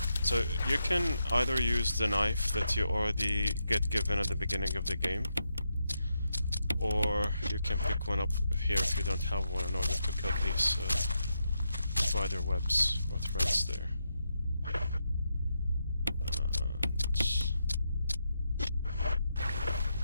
So you can either use the knife that you already get given at the beginning of the game, or you can pick one up here if you don't have one in order to cut these spider webs or threads there. And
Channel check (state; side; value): inverted; both; correlation -0.84